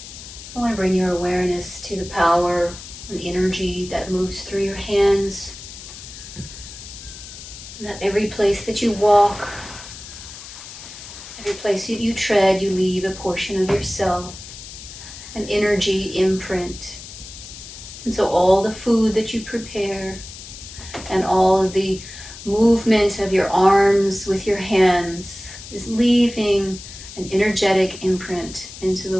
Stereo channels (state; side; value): noise; left; hiss, 14 dB below the sound